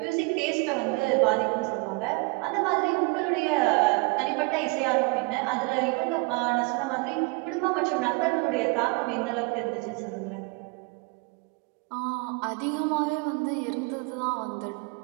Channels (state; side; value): quieter; left; 29.2 dB